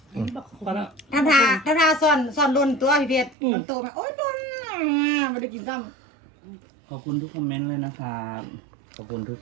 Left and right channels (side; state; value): left; drops out; at 3.4 s